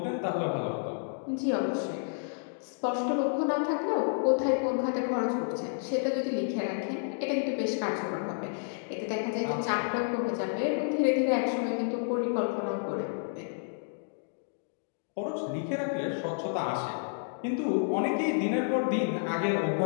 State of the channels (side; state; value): right; silent; digital silence